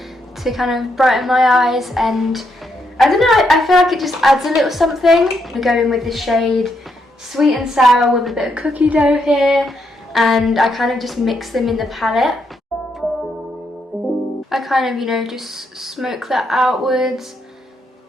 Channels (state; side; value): normal; both; correlation 0.78